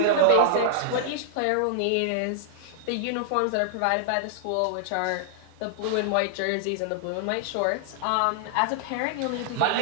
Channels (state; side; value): different; both; correlation -0.01